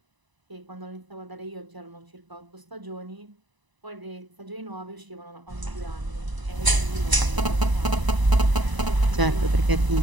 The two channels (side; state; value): left; late; 1.0 ms